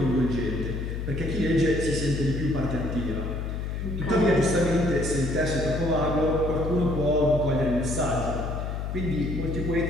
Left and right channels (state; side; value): noise; left; hum, 4 dB below the sound